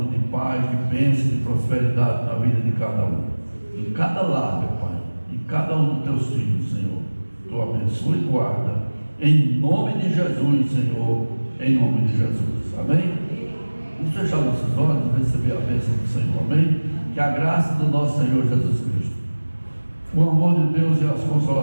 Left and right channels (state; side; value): inverted; both; correlation -1.00